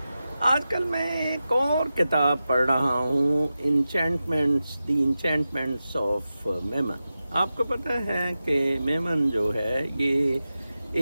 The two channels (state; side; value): inverted; both; correlation -0.93